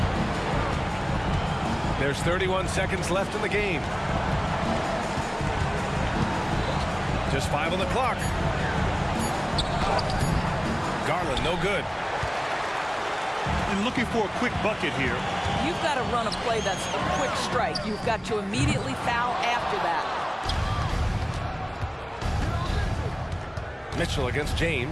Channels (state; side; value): identical; both; correlation 1.00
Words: There's 31 seconds left in the game. Just 5 on the clock. Garland, no good. And looking for a quick bucket here. You've got to run a play that's a quick strike. You've got to immediately foul after that. Mitchell against